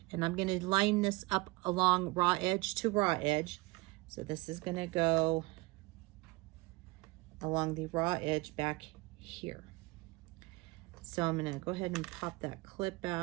and I'm going to line this up along raw edge to raw edge. So this is going to go along the raw edge back here. So I'm going to go ahead and pop that clip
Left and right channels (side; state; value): left; quieter; 24.0 dB